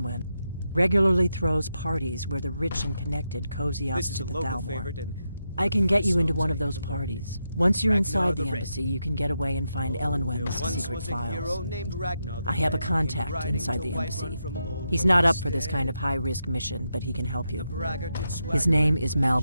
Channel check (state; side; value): inverted; both; correlation -0.85